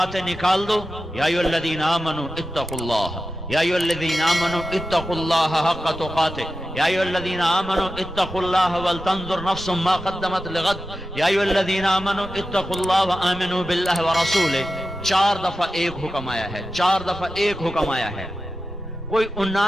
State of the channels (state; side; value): normal; both; correlation 0.92